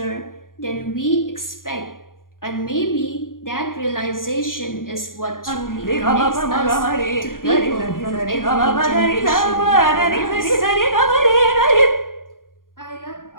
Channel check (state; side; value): late; right; 0.90 ms